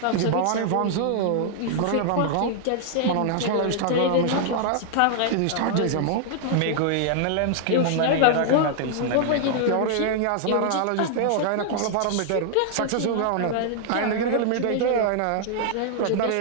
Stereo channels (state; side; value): different; both; correlation -0.01